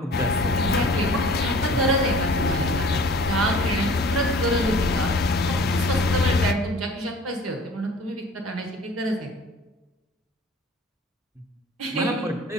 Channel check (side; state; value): both; normal; correlation 0.47